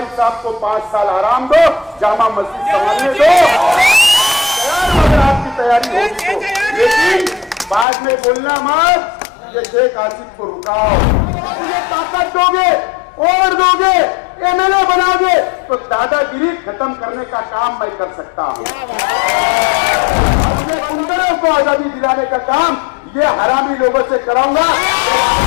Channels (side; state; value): right; drops out; at 7.9 s